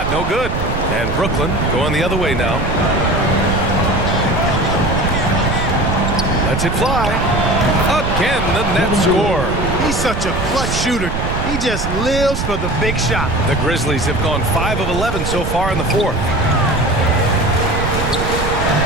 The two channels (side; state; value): right; noise; rumble, 3 dB below the sound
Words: no good. And Brooklyn going the other way now. Lets it fly. Again, the Nets score. He's such a clutch shooter. He just lives for the big shot. The Grizzlies have gone 5 of 11 so far in the fourth.